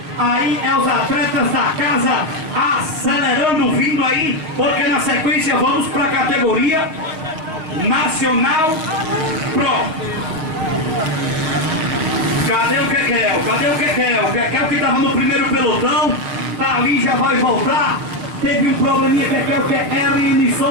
Aí é os atletas da casa acelerando, vindo aí, porque na sequência vamos para a categoria Nacional Pro. Cadê o Kekel? O Kekel que estava no primeiro pelotão, tá ali, já vai voltar. Teve um probleminha, Kekel, que é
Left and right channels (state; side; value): late; left; 6.4 ms